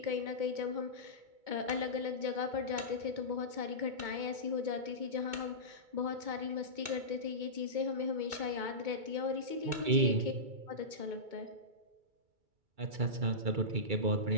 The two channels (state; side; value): late; left; 2.2 ms